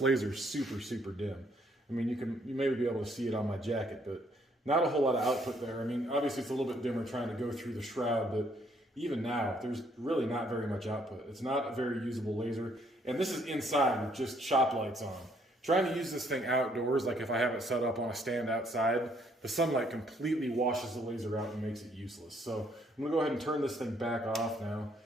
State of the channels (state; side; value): normal; both; correlation 0.67